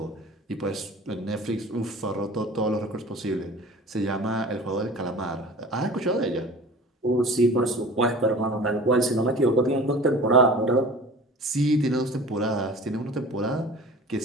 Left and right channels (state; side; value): normal; both; correlation 0.41